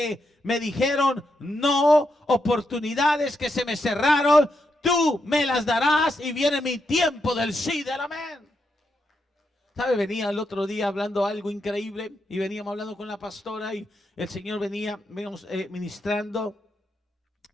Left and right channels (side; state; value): both; normal; correlation 0.83